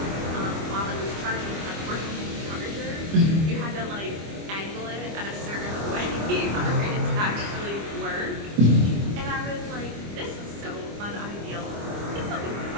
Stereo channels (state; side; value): late; left; 25 ms